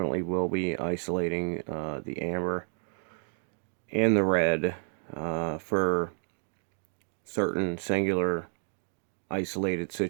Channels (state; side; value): silent; left; 57 dB below the other